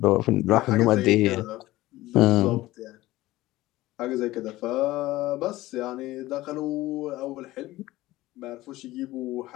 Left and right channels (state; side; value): quieter; right; 17.4 dB